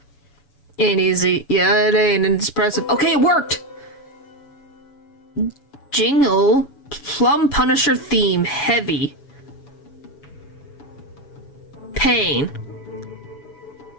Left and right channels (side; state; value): right; late; 7.0 ms